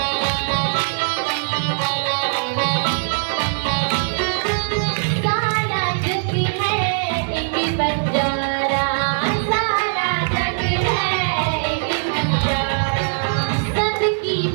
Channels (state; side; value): silent; left; digital silence